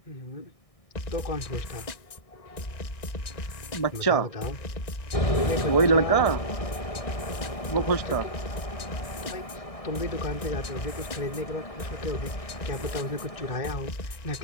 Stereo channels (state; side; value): late; right; 1.6 ms